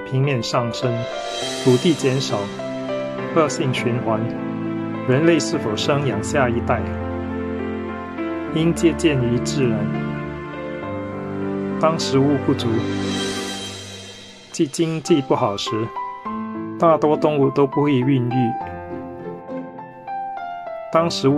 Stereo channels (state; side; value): identical; both; correlation 1.00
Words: 面上升，土地减少，恶性循环。人类是否生养下一代，应借鉴于自然。当食物不足，即经济不好时，大多动物都不会孕育。当食